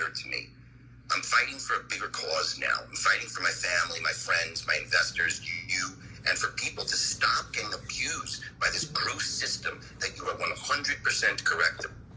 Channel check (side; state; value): both; identical; correlation 1.00